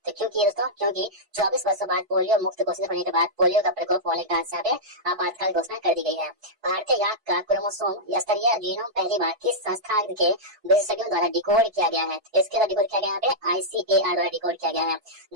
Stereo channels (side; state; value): left; late; 4.5 ms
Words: तो क्यों की है दोस्तों? क्योंकि 24 वर्षों बाद पोलियो मुक्त घोषित होने के बाद पोलियो का प्रकोप होने के कारण यहाँ पे आपातकाल घोषणा कर दी गई है। भारतीय याक का क्रोमोसोम स्तरीय जीनोम पहली बार किस संस्था के विशेषज्ञों द्वारा डिकोड किया गया है? इसके द्वारा डिकोड किया गया यहाँ पे ICAR द्वारा डिकोड किया गया है।